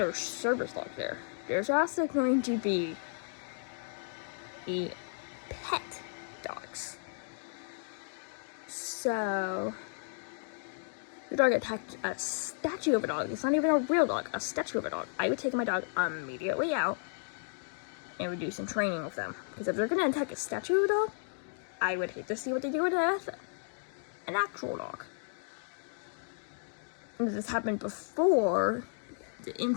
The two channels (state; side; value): silent; right; digital silence